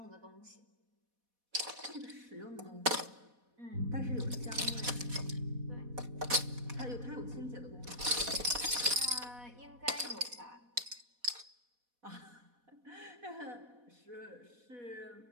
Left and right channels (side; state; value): left; late; 4.1 ms